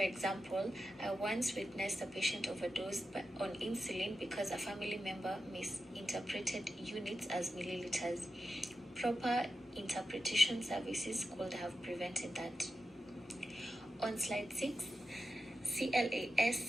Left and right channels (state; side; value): normal; both; correlation 0.90